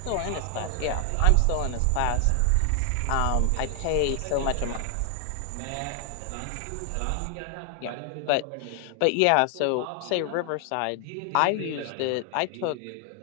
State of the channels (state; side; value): different; both; correlation 0.00